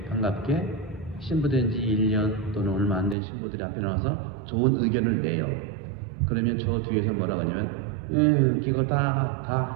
반갑게 신부된 지 1년 또는 얼마 안 된 신부들이 앞에 나와서 좋은 의견을 내요. 그러면 저 뒤에서 뭐라고 하냐면 그거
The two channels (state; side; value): drops out; left; at 3.2 s